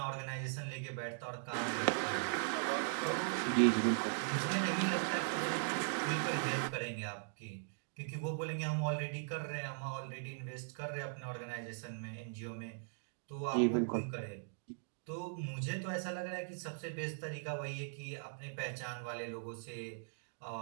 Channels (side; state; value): left; silent; digital silence